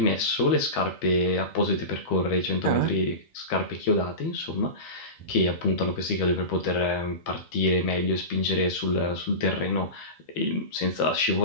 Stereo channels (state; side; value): late; right; 12 ms